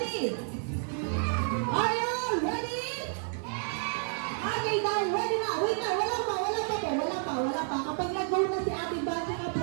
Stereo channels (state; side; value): silent; left; 56 dB below the other